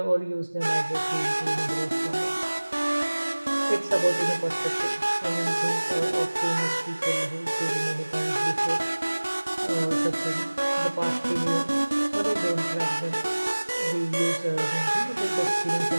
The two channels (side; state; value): both; inverted; correlation -1.00